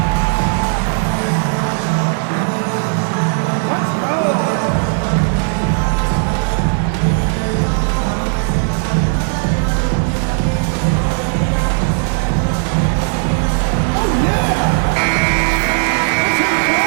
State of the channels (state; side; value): silent; left; 64 dB below the other